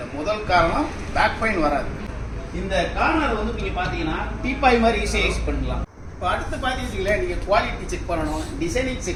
முதல் காரணம் பேக் பெயின் வராது. இந்த கார்னர் வந்து நீங்கள் பார்த்தீங்கன்னா டீப்பாய் மாதிரி ஈஸியாக யூஸ் பண்ணலாம். இப்போ அடுத்து பார்த்தீங்கன்னா நீங்கள் குவாலிட்டி செக் பண்ணணும், டிசைனிங்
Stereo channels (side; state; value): both; identical; correlation 1.00